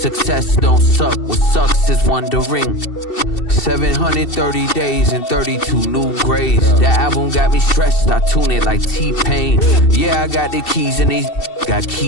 don't suck, what sucks is wondering. 730 days and 32 new grades. That album got me stressed, I tune it like T-Pain. Yeah, I got the keys and these got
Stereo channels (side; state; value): right; late; 2.7 ms